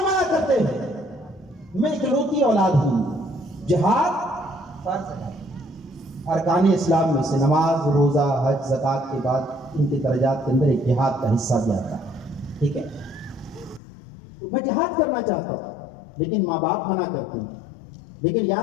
منع کرتے ہیں میں اکلوتی اولاد ہوں. جہاد فرض ہے ارکان اسلام میں سے نماز روزہ حج زکوٰۃ کے بعد ان کے درجات کے اندر ایک جہاد کا حصہ بھی آتا ہے. ٹھیک ہے میں جہاد کرنا چاہتا ہوں لیکن ماں باپ منع کرتے ہیں. لیکن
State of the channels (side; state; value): right; drops out; at 13.8 s